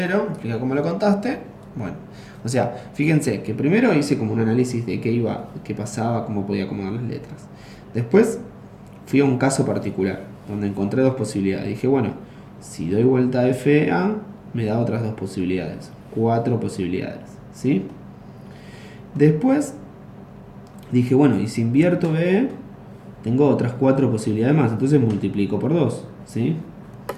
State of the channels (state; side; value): identical; both; correlation 1.00